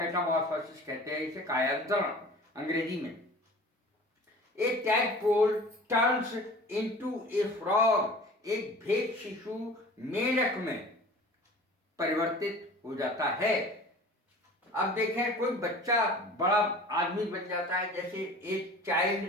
कहते हैं इसे, कायांतरण अंग्रेजी में। A tadpole turns into a frog. एक भेद शिशु मेढक में परिवर्तित हो जाता है। अब देखें कोई बच्चा बड़ा आदमी बन जाता है, जैसे a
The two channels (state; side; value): normal; both; correlation 0.43